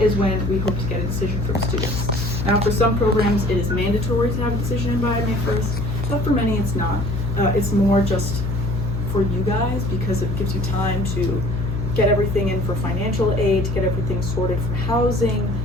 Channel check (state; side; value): noise; left; hum, 1 dB below the sound